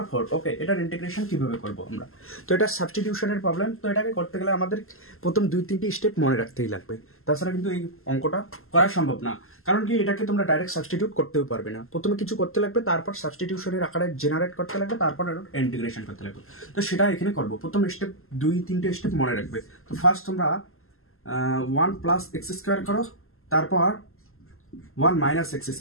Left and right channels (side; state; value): right; late; 0.62 ms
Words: 4। ওকে, এটার ইন্টিগ্রেশন কিভাবে করবো আমরা? তো এটা সাবস্টিটিউশনের প্রবলেম। তো এটাকে করতে গেলে আমাদের প্রথম 2-3টি স্টেপ মনে রাখতেই লাগবে, তাছাড়া কিন্তু এই অঙ্কটা করা সম্ভব না। কারণ কি, এটাকে তোমরা ডাইরেক্ট সাবস্টিটিউট করতেও পারবে না। প্রথমে কিছু করতে লাগবে, তারপর সাবস্টিটিউশনের আকারে জেনারেট করতে লাগবে, তারপর ইন্টিগ্রেশন করতে লাগবে। তো সেটা এখানে করবো। প্রথম স্টেপ 2-3টে স্টেপ মনে রাখবে। তো ফার্স্ট তোমরা 1 প্লাস এক্স স্কোয়ার করো, তারপর 1 মাইনাস এক্স